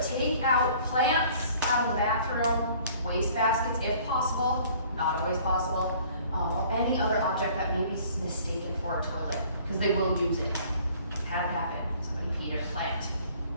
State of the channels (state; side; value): inverted; both; correlation -0.54